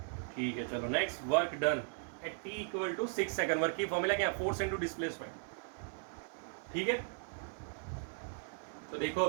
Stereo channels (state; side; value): silent; left; 53 dB below the other